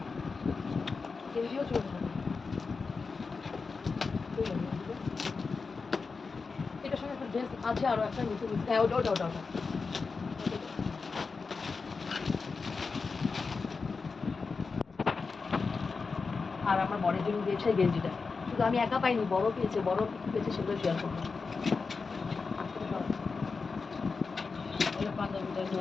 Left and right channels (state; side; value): quieter; right; 4.6 dB